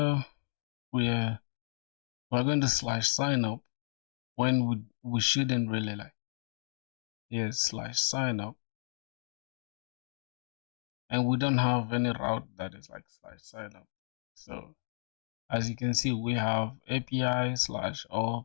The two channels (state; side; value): silent; right; digital silence